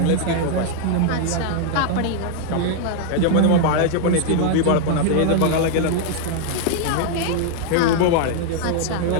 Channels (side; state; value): both; different; correlation 0.00